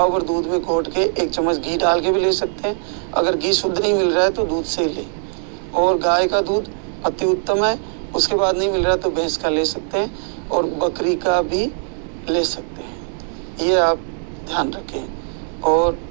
भर दूध में घोट के 1 चम्मच घी डाल के भी ले सकते हैं। अगर घी शुद्ध नहीं मिल रहा है तो दूध से ही ले। और गाय का दूध अति उत्तम है, उसके बाद नहीं मिल रहा तो भैंस का ले सकते हैं और बकरी का भी ले सकते हैं। ये आप ध्यान रखें। और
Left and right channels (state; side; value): silent; left; 65 dB below the other